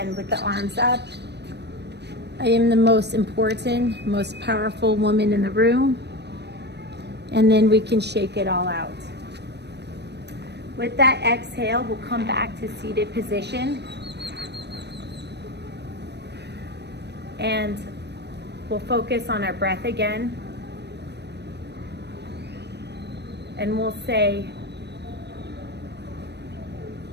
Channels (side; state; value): left; late; 0.49 ms